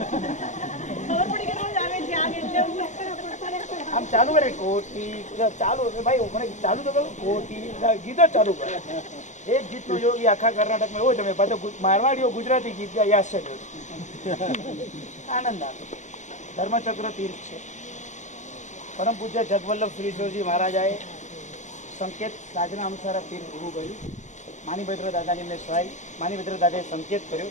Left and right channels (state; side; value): late; right; 0.35 ms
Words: આમ ચાલુ કરે કોટી ચાલુ, ભાઈ મને ચાલુ તો કરું કોટી ગીત જ ચાલુ કરે. એક ગીત નો યોગી આખા કર્ણાટકમાં એવો જમે, પાછો મારવાડીઓ ગુજરાતી ગીત ગાય, આશ્ચર્ય આનંદ આવે. ધર્મચક્ર તીર્થ છે. પરમ પૂજ્ય જગવલ્લભ શ્રીજી મહારાજાએ સંકેત સાધના અનુસાર તીર્થ ઊભું કર્યું. માનીભદ્ર દાદાની એમને સહાય, માનીભદ્ર દાદાએ સંકેત કર્યો.